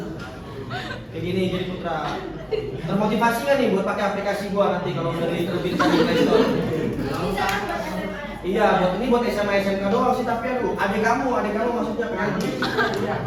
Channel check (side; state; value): both; identical; correlation 1.00